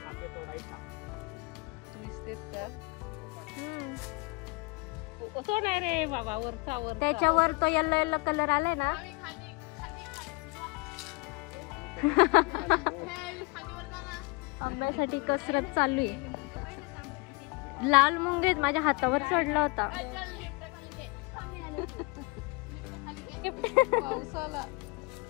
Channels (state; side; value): quieter; right; 28.2 dB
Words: आपले तोडायचा. दिसतेत तर. हम्म. तो नाही रे बाबा, वरचा वर. त्याच्यावर तो येल्लो येल्लो कलर आलाय ना. आंब्यासाठी कसरत चालू आहे. लाल मुंगेत माझ्या हातावर चढला होता. पावसाला.